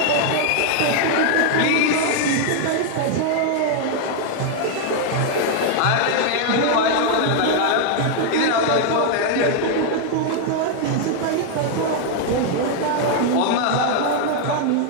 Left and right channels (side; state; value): both; different; correlation 0.00